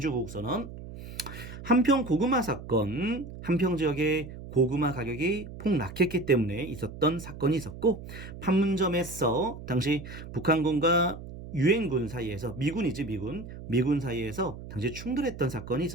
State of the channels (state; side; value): noise; right; hum, 12 dB below the sound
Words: 한평 고구마 사건, 한평 지역의 고구마 가격이 폭락했기 때문에 있었던 사건이 있었고, 판문점에서 당시 북한군과 유엔군 사이에서, 미군이지 미군 사이에서 당시 충돌했던 사건이